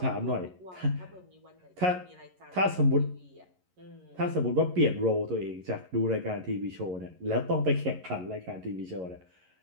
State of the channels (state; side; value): late; left; 11 ms